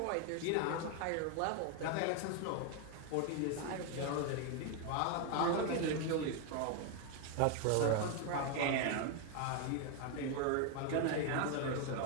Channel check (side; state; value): both; different; correlation 0.01